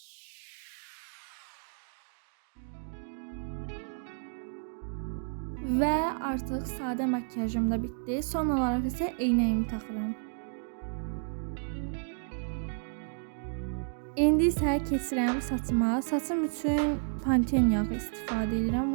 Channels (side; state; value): left; silent; 57 dB below the other